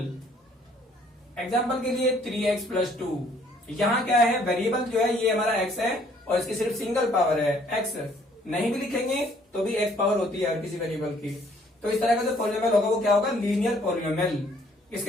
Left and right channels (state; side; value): normal; both; correlation 0.62